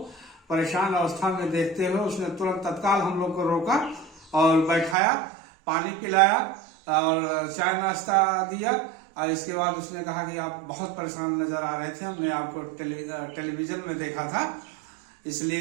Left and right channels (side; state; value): left; drops out; at 5.0 s